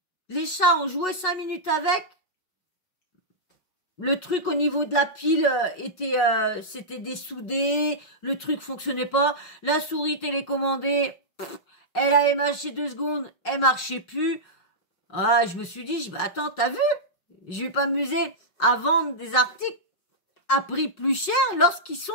les chats ont joué 5 minutes avec. Le truc au niveau de la pile c'était dessoudé. Le truc fonctionnait pas. La souris télécommandée, elle avait marché 2 secondes, elle marchait plus. Ah, je me suis dit, bah, attends, t'as vu? Je vais pas m'amuser à vendre des articles à prix plus cher lorsqu'ils sont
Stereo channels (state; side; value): late; right; 5.4 ms